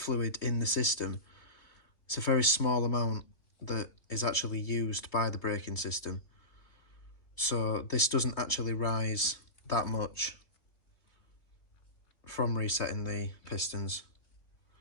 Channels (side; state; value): right; late; 3.3 ms